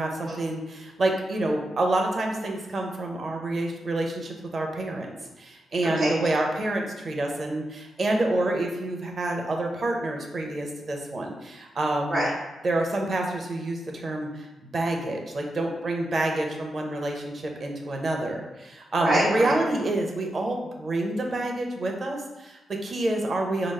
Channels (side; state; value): both; normal; correlation 0.87